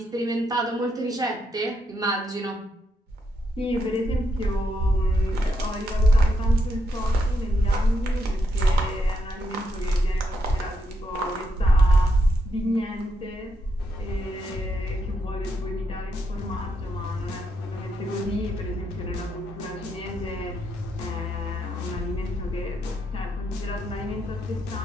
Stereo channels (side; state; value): both; normal; correlation 0.79